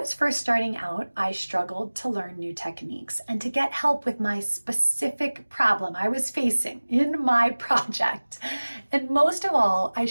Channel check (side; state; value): both; inverted; correlation -1.00